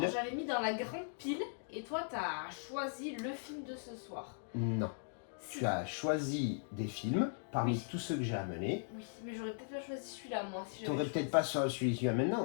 j'avais mis dans la grande pile et toi t'as choisi le film de ce soir. Non. Si. Tu as choisi des films parmi tous ceux que j'ai amenés. Oui, mais j'aurais peut-être pas choisi celui-là moi. Si tu n'aurais peut-être pas celui-là maintenant,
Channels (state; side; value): silent; right; digital silence